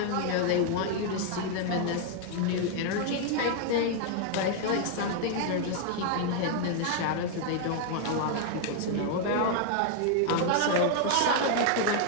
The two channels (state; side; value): different; both; correlation 0.00